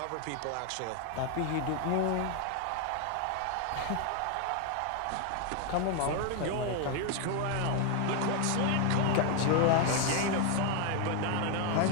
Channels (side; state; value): both; different; correlation 0.01